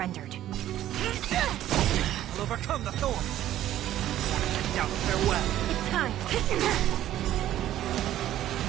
We'll overcome the thorn. Get down, farewell. It's time.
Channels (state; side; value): quieter; left; 12.8 dB